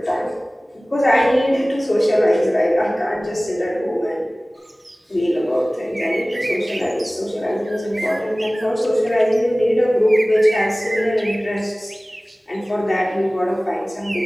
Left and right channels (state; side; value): normal; both; correlation 0.98